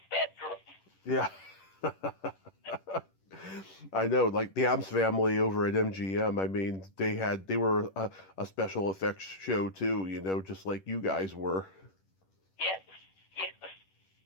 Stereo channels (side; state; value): right; late; 10 ms